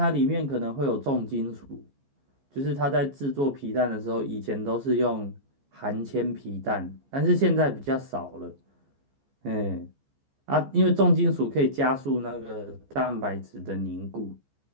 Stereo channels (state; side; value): late; left; 15 ms